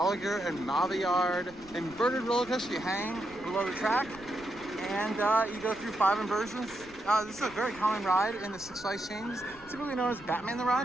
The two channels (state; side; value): noise; right; rumble, 22 dB below the sound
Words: and Maviard inverted roller coaster. You hang below the track and you go through 5 inversions. This is a very common ride in the Six Flags chains, typically known as Batman the